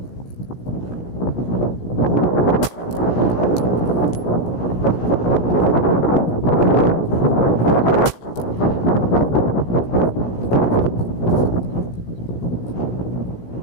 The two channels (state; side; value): late; right; 16 ms